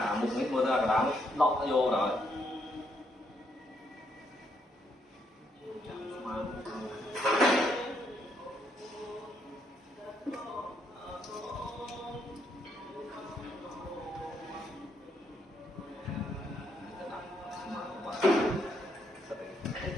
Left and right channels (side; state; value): both; normal; correlation 0.75